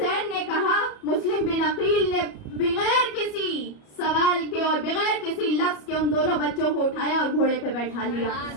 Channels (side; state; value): right; late; 33 ms